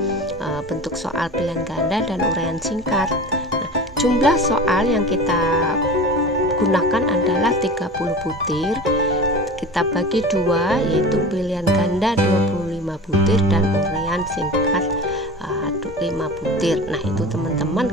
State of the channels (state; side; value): normal; both; correlation 0.34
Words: bentuk soal pilihan ganda dan uraian singkat. Nah, jumlah soal yang kita gunakan adalah 30 butir. Kita bagi dua, yaitu pilihan ganda 25 butir dan uraian singkat 5 butir. Nah, itu teman-teman